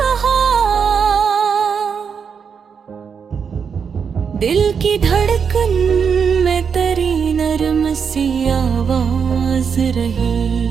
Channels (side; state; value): left; quieter; 6.5 dB